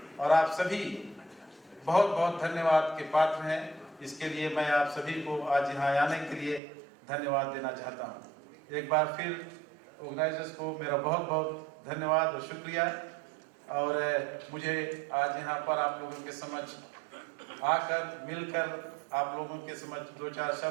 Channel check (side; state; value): left; drops out; at 6.6 s